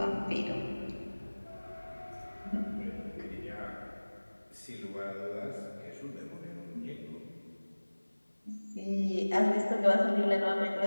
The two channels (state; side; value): inverted; both; correlation -1.00